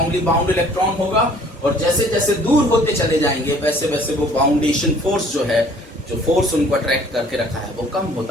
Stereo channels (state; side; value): normal; both; correlation 0.55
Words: बाउंड इलेक्ट्रॉन होगा, और जैसे जैसे दूर होते चले जाएंगे वैसे वैसे वो बाउंडेशन फोर्स जो है, जो फोर्स उनको अट्रैक्ट करके रखा है, वो कम